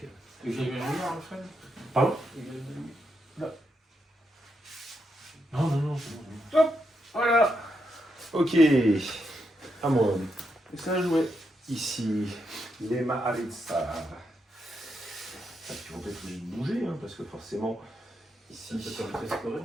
Et j'ai vu un joueur, en fait. Pardon? Non. Hop, voilà. Ok, à moi. Et ça a joué. Ici, les Maharitsa. Ils vont peut-être obligés de bouger, hein, parce que forcément, ici... Ça permet de scorer.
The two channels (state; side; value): normal; both; correlation 0.82